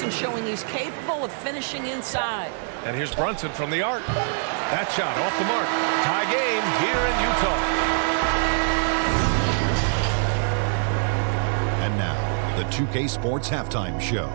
showing he's capable of finishing inside. And here's Brunson from the arc. That shot off the mark. Tie game here in Utah. And now, the 2K Sports Halftime Show.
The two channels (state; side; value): silent; left; 62 dB below the other